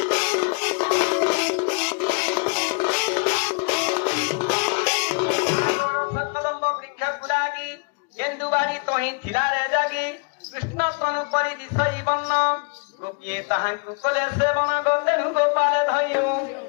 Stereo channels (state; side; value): quieter; right; 34.7 dB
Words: सकलम्ब वृक्ष गुलागी गेंदुबाड़ी तोही थिला रे जागी कृष्ण तनु परि दिसई बन्न गोपिए ताहांकु कोले सेवन गोंदेनु गोपाल धइयो